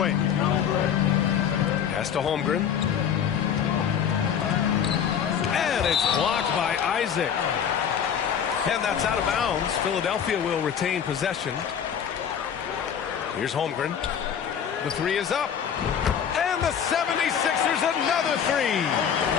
Pass to Holmgren. And it's blocked by Isaac. And that's out of bounds. Philadelphia will retain possession. Here's Holmgren. The three is up. And the 76ers another three.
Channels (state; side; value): quieter; right; 8.2 dB